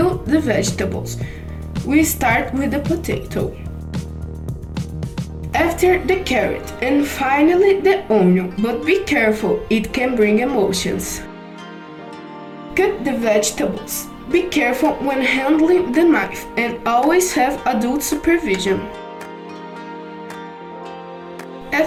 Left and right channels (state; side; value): identical; both; correlation 1.00